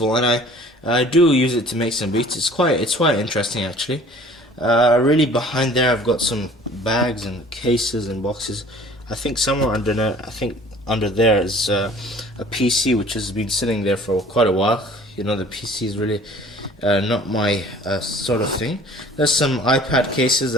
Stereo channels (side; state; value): both; normal; correlation 0.49